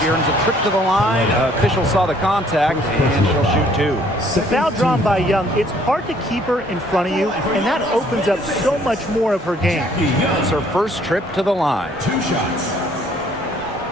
earns a trip to the line. Official saw the contact, and she'll shoot two. The foul drawn by Young, it's hard to keep her in front of you, and that opens up so much more of her game. It's her first trip to the line. 2 shots.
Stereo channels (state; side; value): normal; both; correlation 0.61